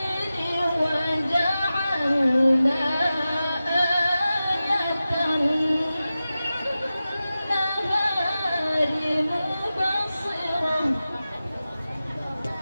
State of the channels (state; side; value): inverted; both; correlation -0.94